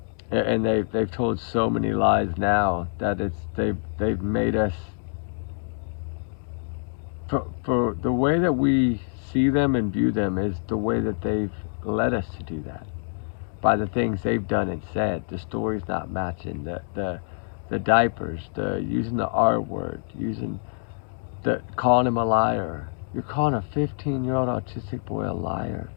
And they've told so many lies now that they've made us, for the way that we see them and view them is the way that they've led us to do that, by the things they've done and said, the stories not matching, the diapers, the using the R word, calling him a liar. You're calling a 15-year-old autistic boy a liar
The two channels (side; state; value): right; silent; 60 dB below the other